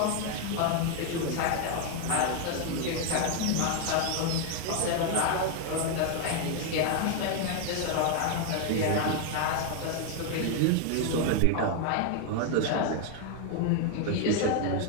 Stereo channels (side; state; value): both; different; correlation 0.01